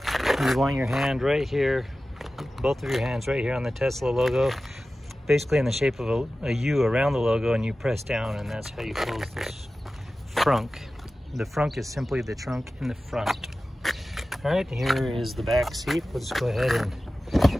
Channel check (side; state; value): both; normal; correlation 0.95